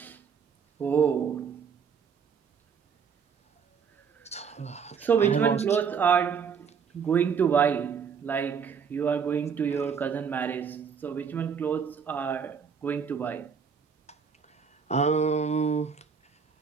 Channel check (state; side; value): quieter; left; 6.5 dB